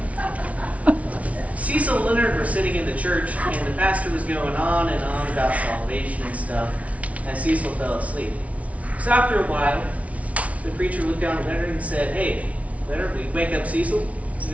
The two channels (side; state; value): left; late; 0.066 ms